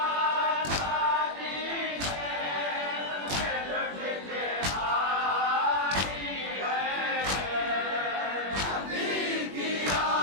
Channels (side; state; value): left; late; 21 ms